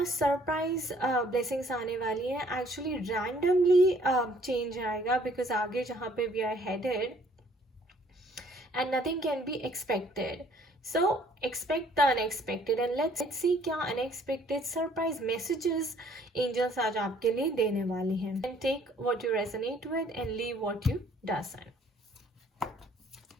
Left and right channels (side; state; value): both; normal; correlation 0.60